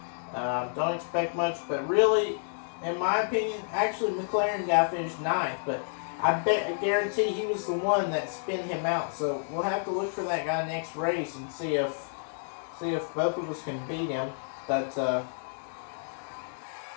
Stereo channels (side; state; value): right; silent; digital silence